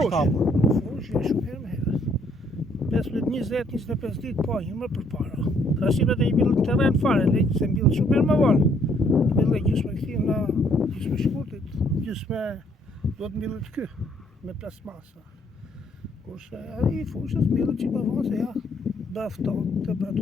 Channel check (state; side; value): normal; both; correlation 0.67